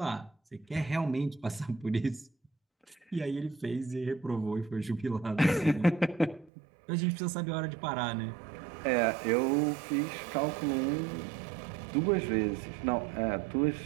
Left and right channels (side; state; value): left; drops out; at 6.5 s